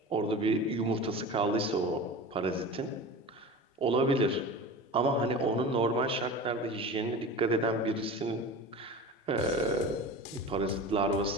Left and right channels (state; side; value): normal; both; correlation 0.33